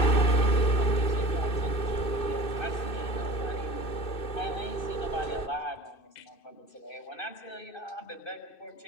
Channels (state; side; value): late; right; 2.6 ms